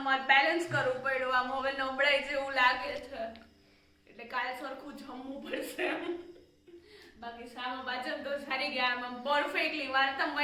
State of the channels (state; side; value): identical; both; correlation 1.00